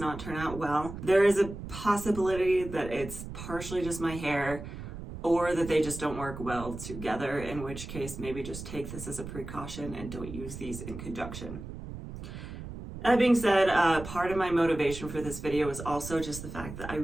turn out well. There is a possibility that it's partially just my hair or that they just don't work well together, in which case maybe just take this as a precaution and don't use these in conjunction. That being said, part of my motivation for this video is also just the fact that I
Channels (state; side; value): noise; right; rumble, 10 dB below the sound